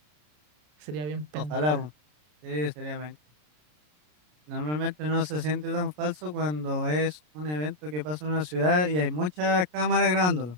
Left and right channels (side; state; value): left; late; 33 ms